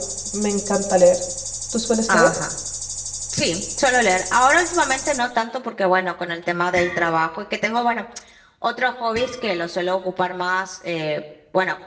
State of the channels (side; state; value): both; identical; correlation 1.00